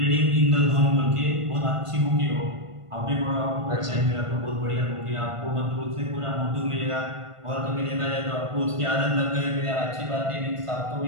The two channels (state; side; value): late; left; 1.5 ms